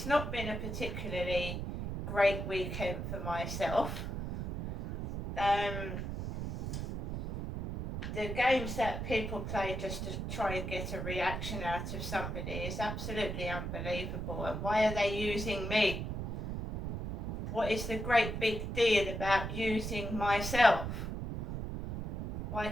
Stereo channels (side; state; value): right; noise; rumble, 4 dB below the sound